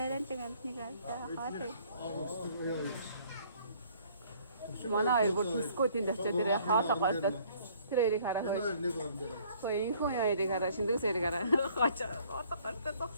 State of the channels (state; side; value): inverted; both; correlation -0.59